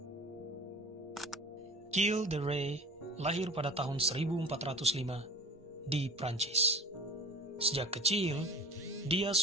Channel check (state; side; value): normal; both; correlation 0.40